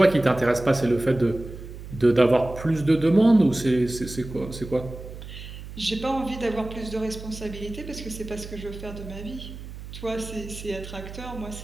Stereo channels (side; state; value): right; noise; hum, 12 dB below the sound